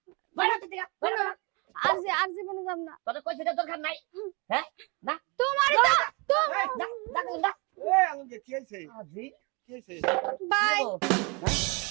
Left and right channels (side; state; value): left; quieter; 29.5 dB